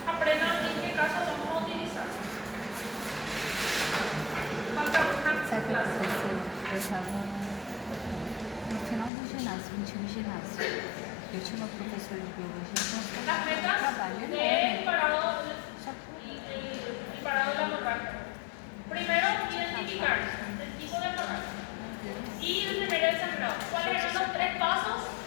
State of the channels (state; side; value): drops out; right; at 9.1 s